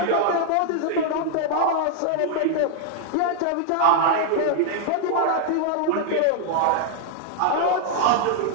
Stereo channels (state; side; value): different; both; correlation -0.01